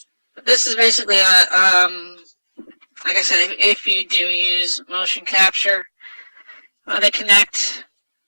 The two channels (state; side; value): inverted; both; correlation -1.00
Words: But this is basically like I said, if you do use motion capture, they connect.